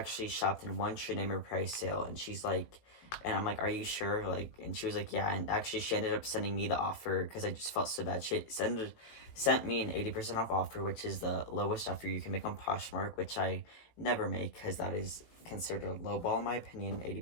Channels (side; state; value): right; late; 18 ms